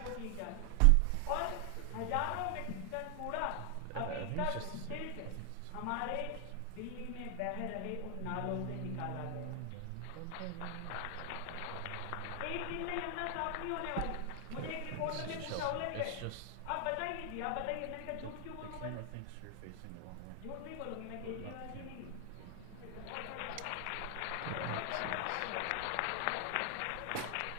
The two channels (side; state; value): both; different; correlation 0.00